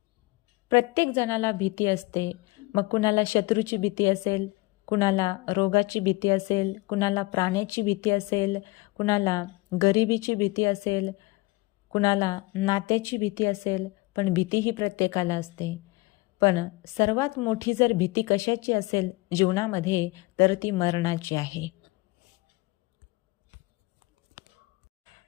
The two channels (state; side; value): quieter; right; 22.8 dB